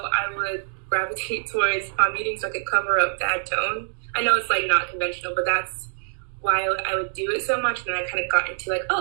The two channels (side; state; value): left; silent; digital silence